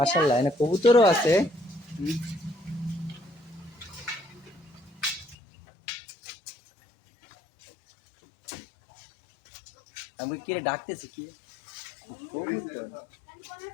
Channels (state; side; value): drops out; right; at 5.4 s